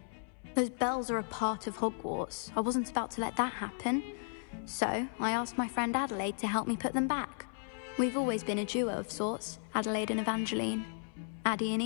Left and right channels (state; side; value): silent; right; 55 dB below the other